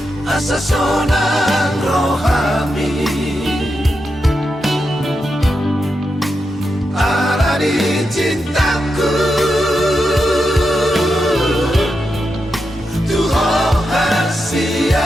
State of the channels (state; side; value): normal; both; correlation 0.87